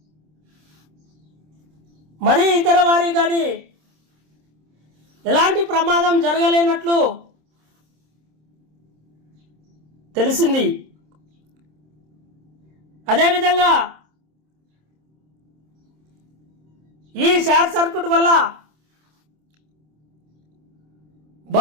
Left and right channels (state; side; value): late; left; 26 ms